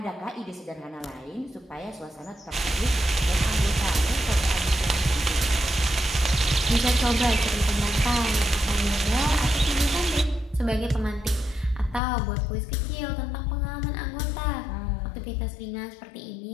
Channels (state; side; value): drops out; right; at 12.0 s